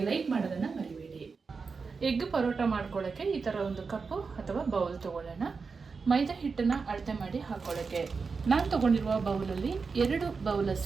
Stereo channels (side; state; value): left; quieter; 4.9 dB